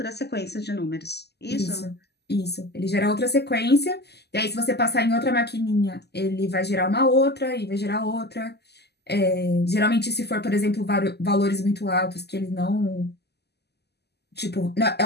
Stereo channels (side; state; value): right; late; 0.48 ms